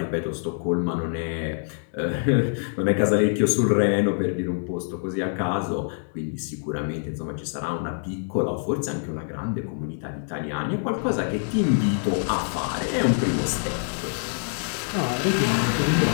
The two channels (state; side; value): silent; right; 62 dB below the other